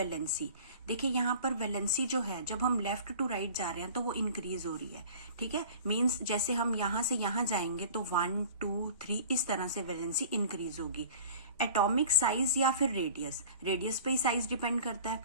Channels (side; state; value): both; inverted; correlation -0.43